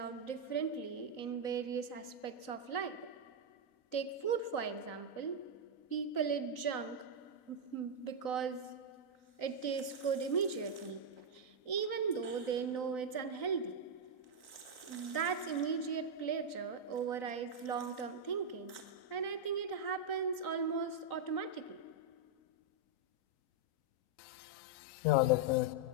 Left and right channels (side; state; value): right; late; 3.9 ms